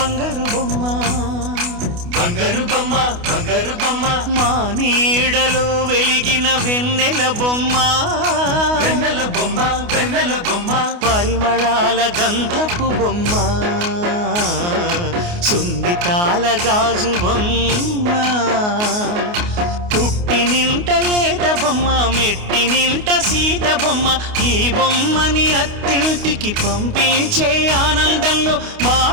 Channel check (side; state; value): left; late; 28 ms